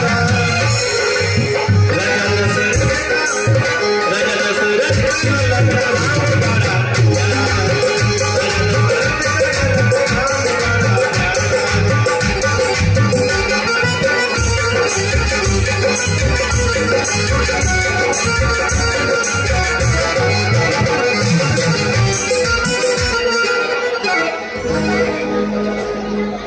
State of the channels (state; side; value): identical; both; correlation 1.00